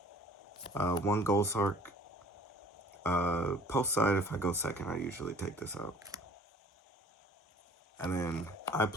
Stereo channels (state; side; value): normal; both; correlation 0.51